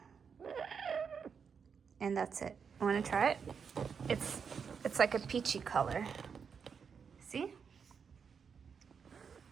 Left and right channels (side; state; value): left; quieter; 6.4 dB